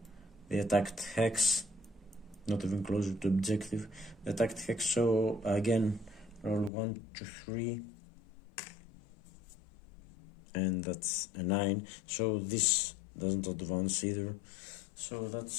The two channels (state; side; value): drops out; right; at 6.7 s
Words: the attacked hex. Not even closer to objective. The attacked hex, so again, roll 1 to 3. And that's a 9. So this doesn't advance either. So